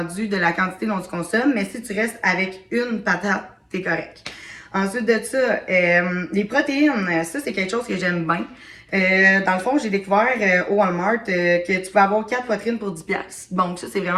de la quantité dont tu consommes, mais si tu restes avec une patate, t'es correct. Ensuite de ça, les protéines, ça, c'est quelque chose que j'aime bien. Dans le fond, j'ai découvert au Walmart que tu peux avoir 4 poitrines pour 10$. Donc, ça, c'est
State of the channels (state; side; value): identical; both; correlation 1.00